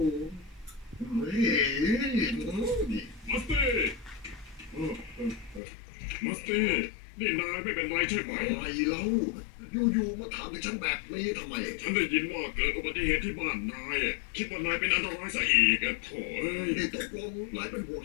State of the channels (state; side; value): drops out; right; at 5.6 s